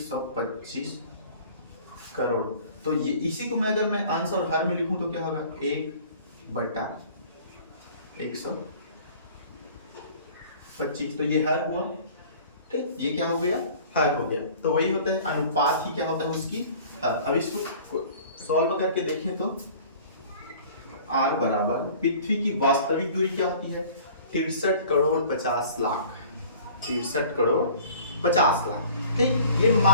करोड़। तो ये इसी को मैं अगर मैं अंश और हर में लिखूं तो क्या होगा, 1/125, तो ये हर हुआ। ठीक, ये क्या हो गया, हर हो गया। तो वही होता है अनुपात ही क्या होता है उसकी हर। अब इसको सॉल्व करके देखें तो r बराबर पृथ्वी की वास्तविक दूरी क्या होती है, 63 करोड़ 50 लाख, 63 करोड़ 50 लाख। ठीक, ये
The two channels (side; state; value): both; inverted; correlation -0.47